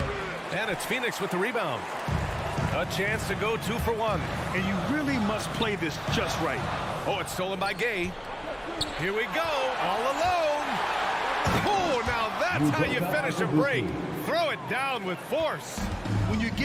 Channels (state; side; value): identical; both; correlation 1.00